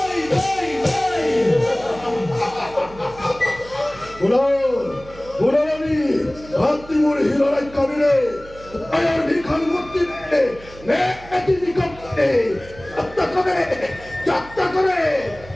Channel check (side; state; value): right; noise; hum, 19 dB below the sound